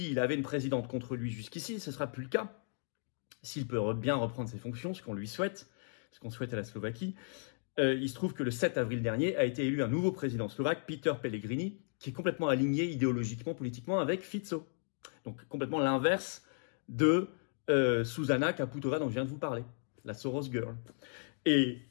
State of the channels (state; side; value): silent; right; digital silence